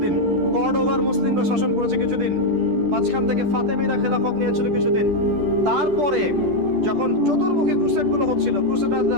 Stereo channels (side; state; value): left; late; 10 ms